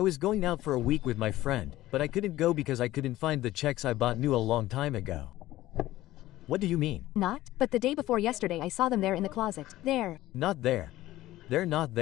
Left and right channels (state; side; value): quieter; right; 15.8 dB